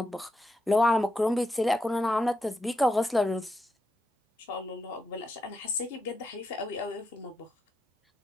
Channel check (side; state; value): both; normal; correlation 0.85